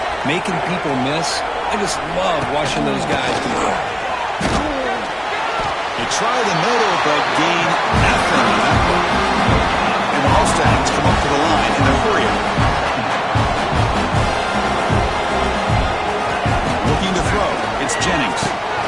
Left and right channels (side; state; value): both; identical; correlation 1.00